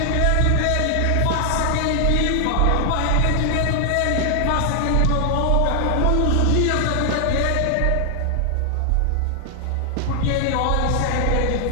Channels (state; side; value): different; both; correlation 0.00